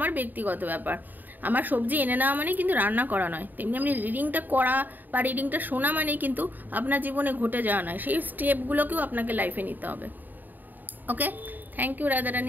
ব্যক্তিগত ব্যাপার। আমার সবজি এনে নেওয়া মানে কিন্তু রান্না করা নয়। তেমনি আপনি রিডিংটা করা বা রিডিংটা শোনা মানেই কিন্তু আপনার জীবনে ঘটে যাওয়া নয়। সেই স্টেপগুলোকেও আপনাকে লাইফে নিতে হবে। ওকে, থ্যাংক ইউ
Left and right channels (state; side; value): late; left; 0.088 ms